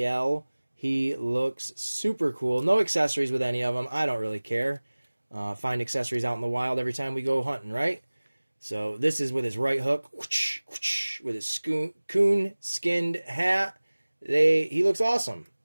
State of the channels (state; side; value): inverted; both; correlation -1.00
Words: He looks super cool. No accessories with any of them. I don't really care. Find accessories out in the wild every time we go hunting, right? So this is with his right hook, whoosh, whoosh, with his coon skinned hat. He looks awesome.